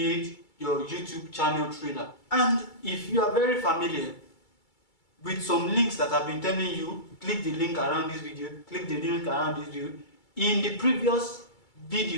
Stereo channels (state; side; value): late; right; 2.3 ms